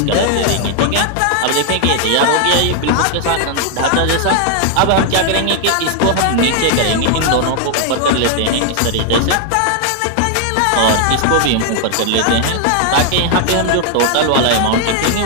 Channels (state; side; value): different; both; correlation 0.00